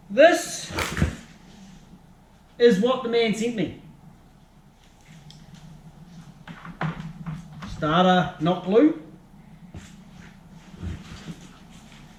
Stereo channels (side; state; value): both; identical; correlation 1.00